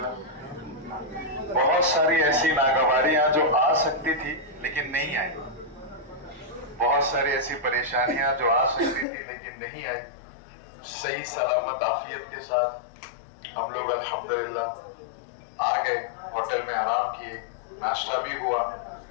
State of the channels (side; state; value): right; drops out; at 9.1 s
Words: बहुत सारी ऐसी नागवारियां जो आ सकती थी लेकिन नहीं आई, बहुत सारी ऐसी परेशानियां जो आ सकती थी लेकिन नहीं आई। सही सलामत आफियत के साथ हम लोग अल्हम्दुलिल्लाह आ गए, होटल में आराम किए, नाश्ता भी हुआ।